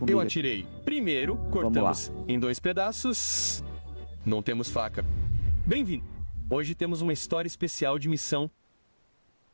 Eu atirei. Primeiro, cortamos em 2 pedaços. Não temos faca. Bem-vindo. Hoje temos uma história especial de missão.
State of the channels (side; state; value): both; inverted; correlation -1.00